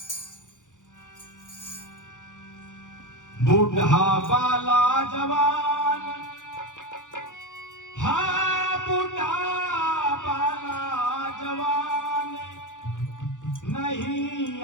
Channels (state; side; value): late; right; 0.87 ms